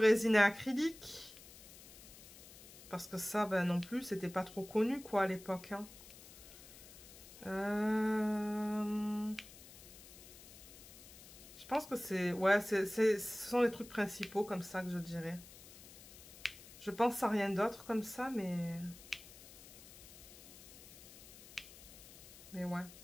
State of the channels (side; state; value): left; noise; hiss, 18 dB below the sound